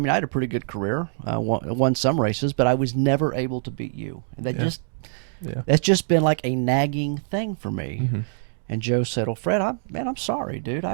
a pretty good career, won some races, but I was never able to beat you. And that's just been like a nagging thing for me." Mm-hmm. And Joe said, "Well, Fred, I'm sorry, dude.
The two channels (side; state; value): left; silent; digital silence